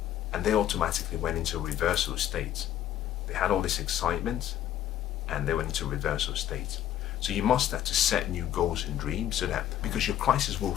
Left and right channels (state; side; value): quieter; right; 11.5 dB